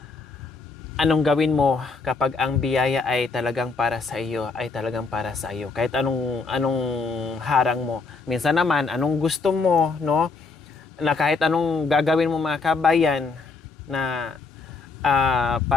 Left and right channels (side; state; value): right; quieter; 4.2 dB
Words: anong gawin mo kapag ang biyaya ay talagang para sa iyo, ay talagang para sa iyo. Kahit anong harang mo. Minsan naman, anong gusto mo, no? Na kahit anong gagawin mo mga kabayan na